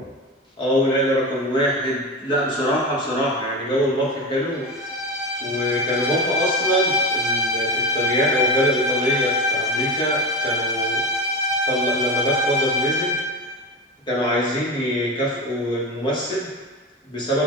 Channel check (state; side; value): normal; both; correlation 0.22